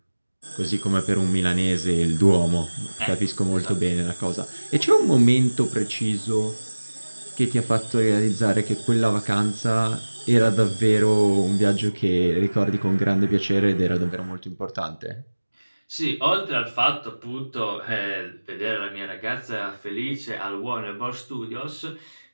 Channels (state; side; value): inverted; both; correlation -1.00